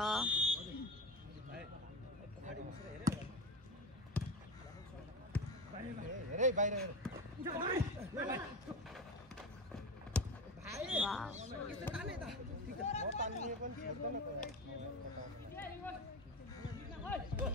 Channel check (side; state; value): both; normal; correlation 0.24